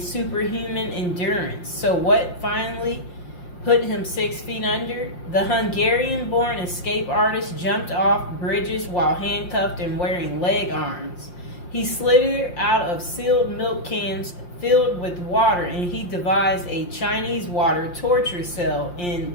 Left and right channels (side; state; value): right; late; 5.7 ms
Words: superhuman endurance. So what finally put him 6 feet under? The Hungarian-born escape artist jumped off bridges while handcuffed and wearing leg irons. He slithered out of sealed milk cans filled with water, and he devised a Chinese water torture cell in